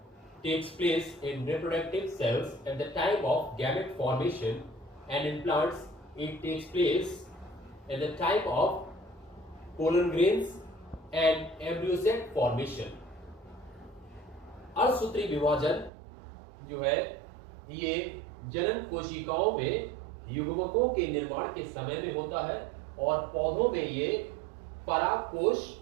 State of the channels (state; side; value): drops out; left; at 15.9 s